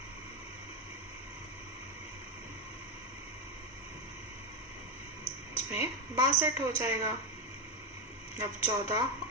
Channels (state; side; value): normal; both; correlation 0.11